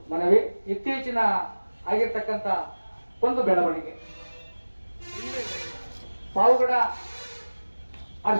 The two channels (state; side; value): inverted; both; correlation -1.00